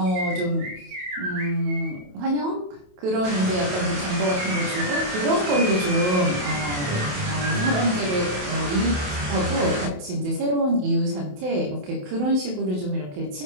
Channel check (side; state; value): left; late; 28 ms